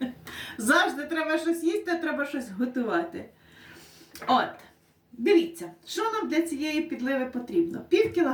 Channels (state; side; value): identical; both; correlation 1.00